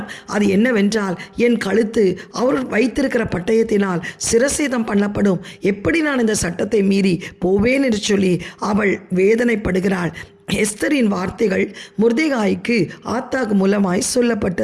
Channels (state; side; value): identical; both; correlation 1.00